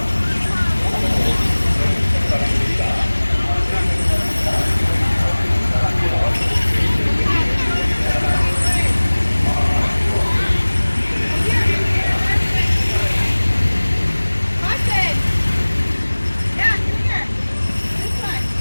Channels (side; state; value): both; inverted; correlation -1.00